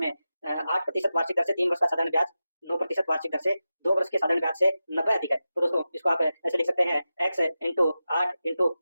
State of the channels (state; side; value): inverted; both; correlation -0.92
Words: 8% वार्षिक दर से 3 वर्ष का साधारण ब्याज, 9% वार्षिक दर से 2 वर्ष के साधारण ब्याज से 90 अधिक है, तो दोस्तों इसको आप ऐसे लिख सकते हैं x इंटू 8 इंटू